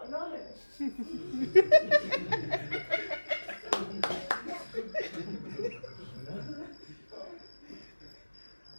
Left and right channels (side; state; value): both; inverted; correlation -1.00